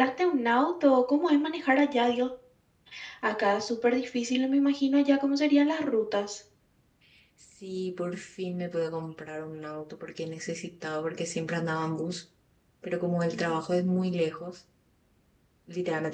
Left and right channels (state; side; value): identical; both; correlation 1.00